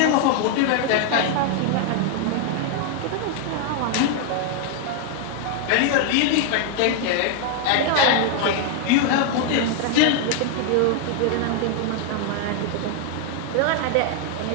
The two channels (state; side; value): different; both; correlation 0.00